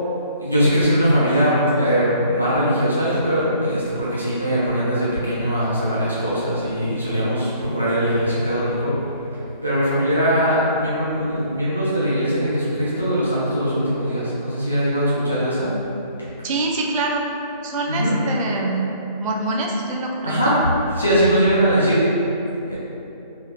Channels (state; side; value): inverted; both; correlation -0.58